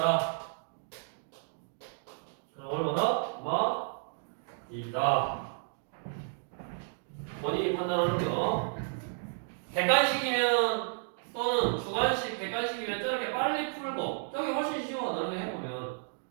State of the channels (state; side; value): silent; left; digital silence